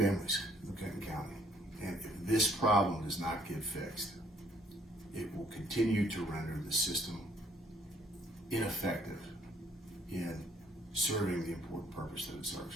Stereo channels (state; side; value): normal; both; correlation 0.64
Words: in Kenton County. And if this problem does not get fixed, it will continue to render the system ineffective in serving the important purpose that it